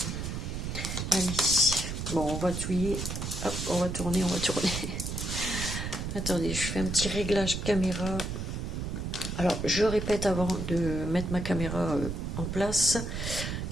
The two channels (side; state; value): right; noise; rumble, 4 dB below the sound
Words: Allez. Bon, on va touiller. Hop, on va tourner, on va tourner. Attendez, je fais un petit réglage caméra. Alors, je répète avant de mettre ma caméra en place